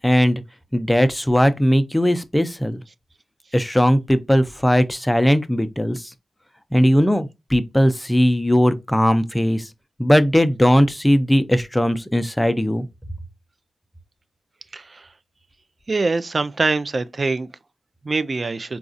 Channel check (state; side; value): normal; both; correlation 0.98